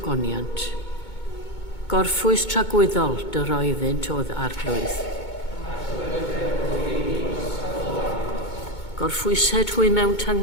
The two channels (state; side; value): late; right; 2.2 ms